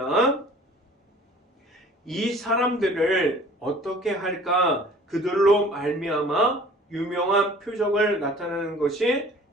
이 사람들을 어떻게 할까 그들로 말미암아 유명한 표적을 나타내는 것이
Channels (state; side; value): normal; both; correlation 0.49